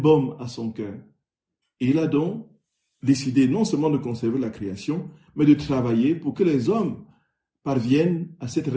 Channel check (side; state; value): both; identical; correlation 1.00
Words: à son cœur. Et il a donc décidé non seulement de conserver la création, mais de travailler pour que les hommes parviennent à cette